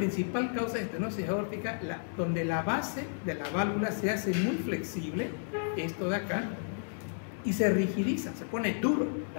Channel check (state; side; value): silent; right; digital silence